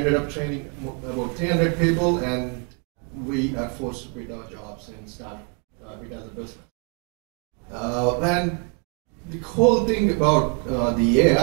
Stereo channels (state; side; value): quieter; left; 34.3 dB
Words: up training about 300 people, and we are forced to quit our jobs and start it as a business. And the whole thing about the